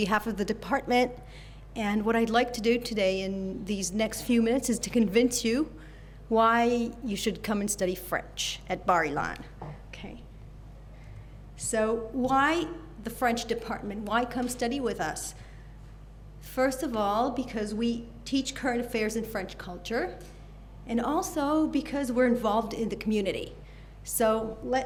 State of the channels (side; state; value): both; identical; correlation 1.00